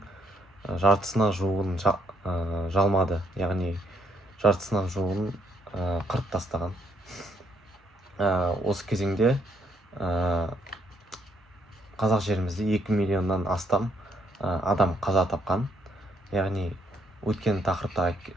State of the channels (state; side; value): normal; both; correlation 0.72